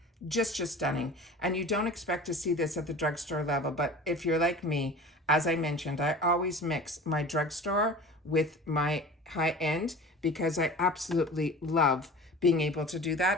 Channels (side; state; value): both; normal; correlation 0.38